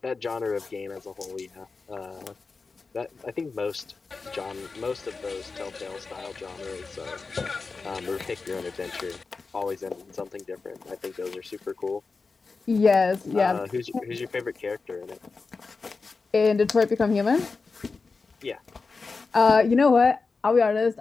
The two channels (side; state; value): right; quieter; 4.3 dB